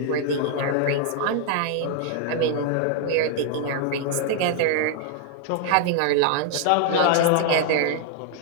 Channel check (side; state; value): both; different; correlation 0.00